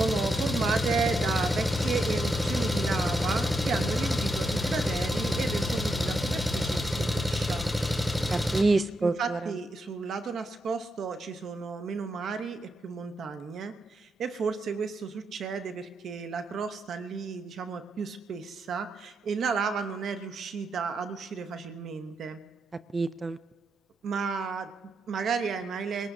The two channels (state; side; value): normal; both; correlation 0.83